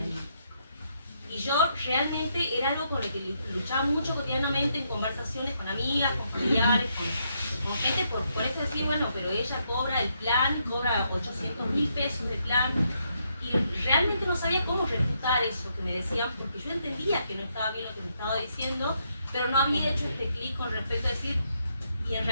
sabía cómo refutar eso que me decían, porque yo entendía que no estaba bien lo que me estaba diciendo, pero no había hecho este clic con respecto a decir, y en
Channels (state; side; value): inverted; both; correlation -0.77